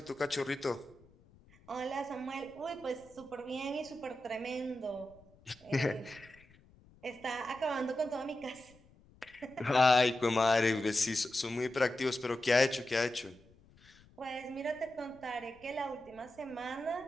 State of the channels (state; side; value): noise; left; rumble, 27 dB below the sound